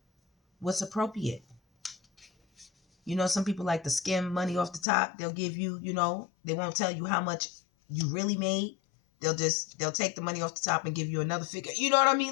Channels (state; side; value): drops out; right; at 4.9 s